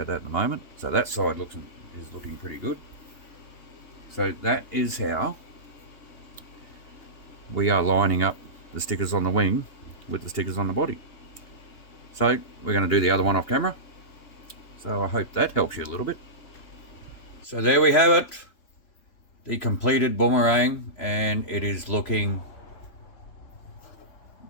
that at the moment. So that side is looking pretty good. So that is how we are lining up the stickers on the wing with the stickers on the body. So we're going to do the other one off camera. So I hope that helps you a little bit. So there we have it, the completed Boomerang, and it is looking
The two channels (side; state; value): right; late; 3.3 ms